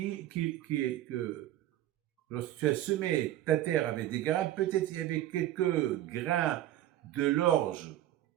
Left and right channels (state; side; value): quieter; left; 13.3 dB